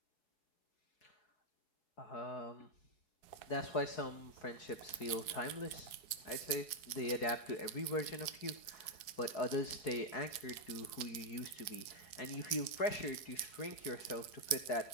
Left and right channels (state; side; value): late; right; 4.7 ms